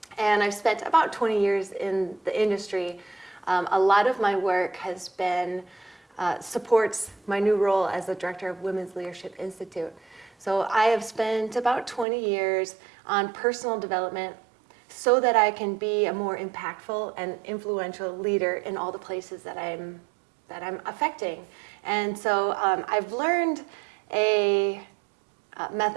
and I've spent about 20 years in the industry. A lot of my work has been supports my new role as the Director of Women's Leadership Institute. So I have spent about 20 years on personal development so that I can be a more impactful and influential leader in all the places that I'm affecting. And so I've learned a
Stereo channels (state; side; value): drops out; left; at 12.1 s